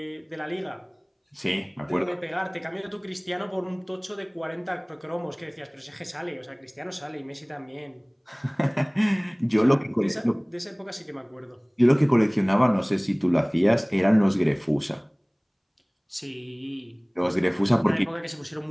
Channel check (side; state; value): both; identical; correlation 1.00